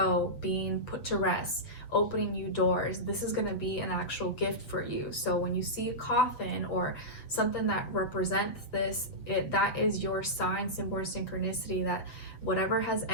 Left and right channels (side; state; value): right; late; 7.7 ms